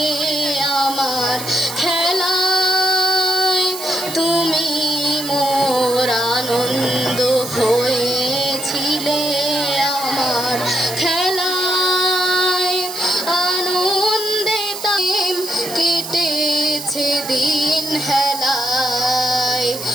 আমার খেলায়, তুমি মোর আনন্দ হয়েছিলে আমার খেলায়। আনন্দে তাই কেটেছে দিন হেলায়।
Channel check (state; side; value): noise; right; hiss, 9 dB below the sound